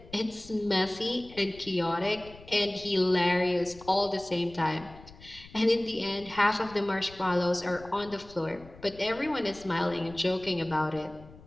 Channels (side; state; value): left; noise; rumble, 20 dB below the sound